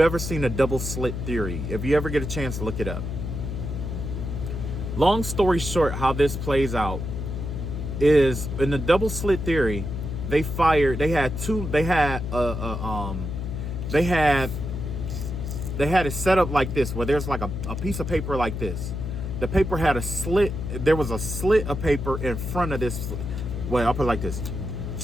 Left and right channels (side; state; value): left; noise; hum, 4 dB below the sound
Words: ever seen a double slit theory, if you ever get a chance to look it up. Long story short, how this plays out is in the double slit theory, they had it set up like this, where there's like a piece of paper like this. The paper had a slit. There was a slit of paper in front of this. Well, I'll put it like this.